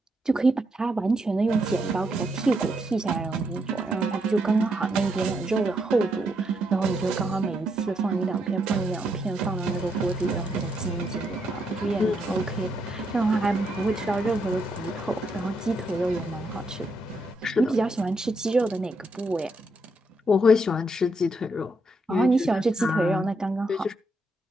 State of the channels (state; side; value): normal; both; correlation 0.78